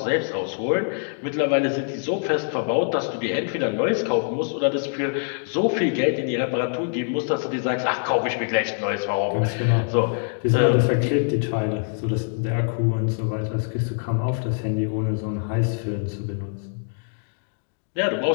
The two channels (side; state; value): right; silent; 62 dB below the other